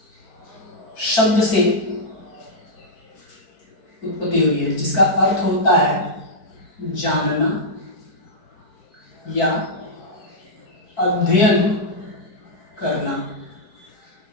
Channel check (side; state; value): right; late; 4.6 ms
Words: शब्द से उत्पत्ति हुई है, जिसका अर्थ होता है जानना या अध्ययन करना।